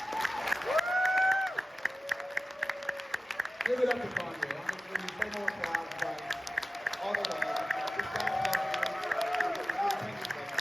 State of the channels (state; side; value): normal; both; correlation 0.95